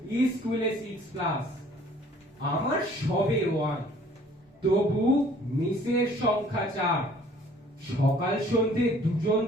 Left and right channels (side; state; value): both; normal; correlation 0.55